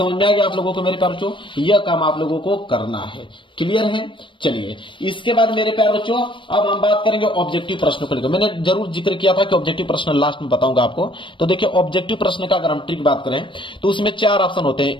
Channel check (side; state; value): right; late; 0.24 ms